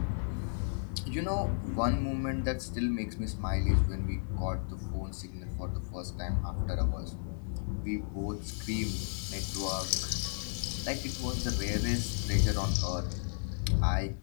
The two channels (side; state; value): right; silent; digital silence